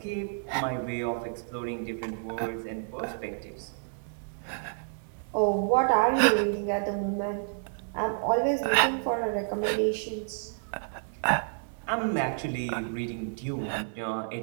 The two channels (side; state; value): left; silent; digital silence